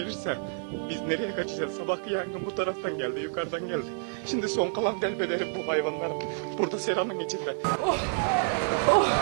biz nereye kaçacağız? Sabahki yangın bu taraftan geldi, yukarıdan geldi. Şimdi son kalan delbederim bu hayvanların. Burada seranın içinde. Oh, oh,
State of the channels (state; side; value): silent; left; digital silence